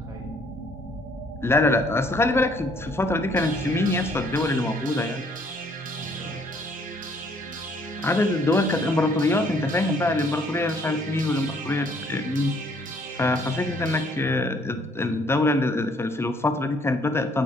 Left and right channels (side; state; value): both; normal; correlation 0.63